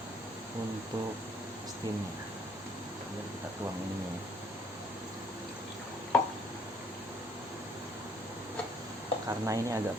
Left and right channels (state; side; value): normal; both; correlation 0.62